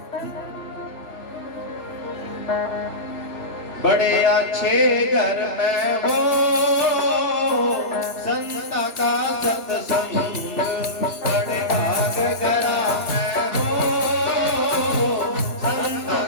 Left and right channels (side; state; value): right; late; 3.2 ms